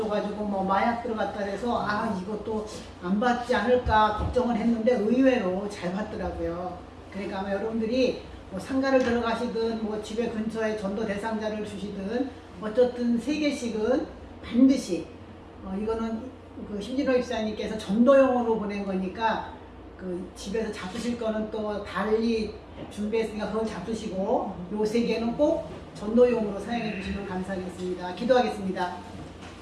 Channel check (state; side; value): identical; both; correlation 1.00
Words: 뭐 마약 들어갔다 해서 이것도 안 받지 않을까 걱정을 했는데 의외로 잘 받더라고요. 그러니까 아마 여러분들이 뭐 상가를 들어가시든 뭐 집에 근처에 전도 대상자를 주시든 어쨌든 3개씩은 반드시 이거는 그 심진호 입사님께서 전도용으로 보낸 거니까 그 집에서 잡수실 거는 또 달리 준비했으니까 그걸 잡수시고 요 3개는 꼭 전도용으로 사용해 주시면 감사하겠습니다. 기도하겠습니다.